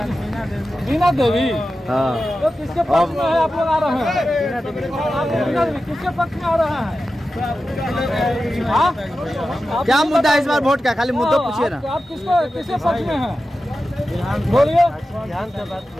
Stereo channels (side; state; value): both; normal; correlation 0.93